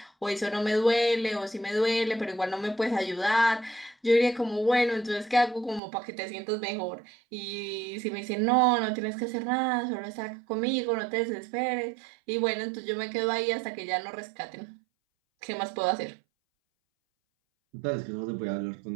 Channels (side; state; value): left; drops out; at 5.8 s